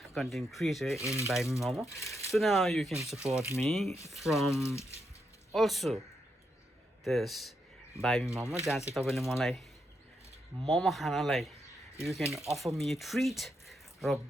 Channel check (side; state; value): both; normal; correlation 0.82